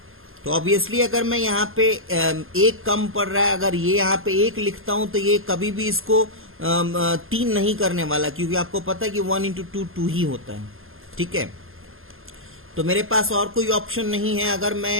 तो ऑब्वियसली अगर मैं यहाँ पे 1 कम पड़ रहा है, अगर ये यहाँ पे 1 लिखता हूं तो ये कभी भी इसको 3 नहीं करने वाला, क्योंकि आपको पता है कि 1 इंटू 2 2 ही होता है। ठीक है, तो मेरे पास और कोई ऑप्शन नहीं है। अगर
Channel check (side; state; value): left; late; 0.60 ms